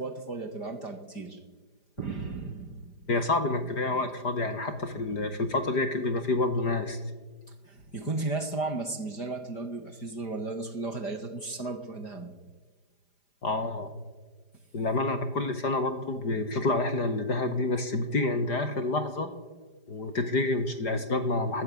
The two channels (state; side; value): late; right; 5.0 ms